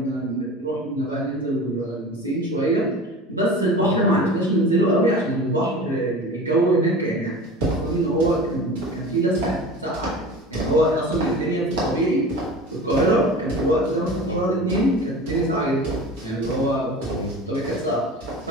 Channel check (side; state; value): both; normal; correlation 0.36